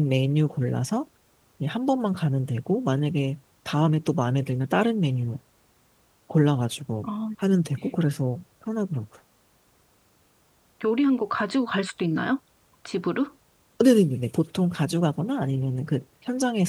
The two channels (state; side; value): identical; both; correlation 1.00